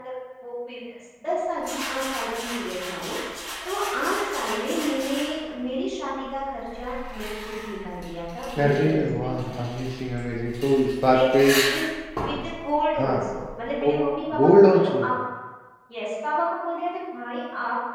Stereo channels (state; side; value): identical; both; correlation 1.00